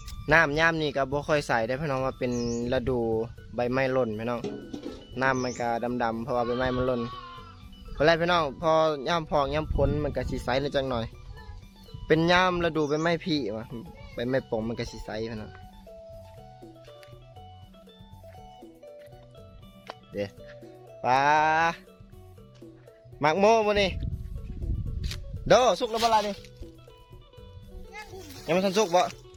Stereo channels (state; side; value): identical; both; correlation 1.00